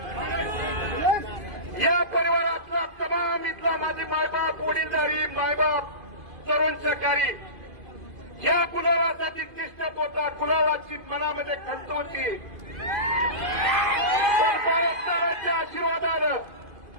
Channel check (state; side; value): late; left; 2.5 ms